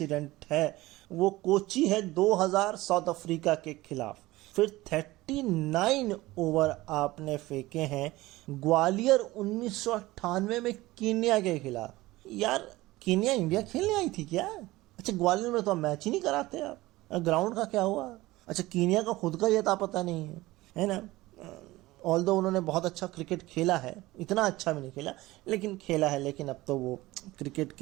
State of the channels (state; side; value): quieter; left; 18.8 dB